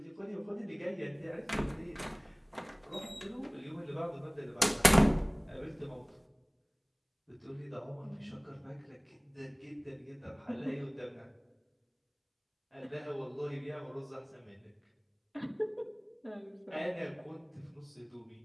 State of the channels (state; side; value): identical; both; correlation 1.00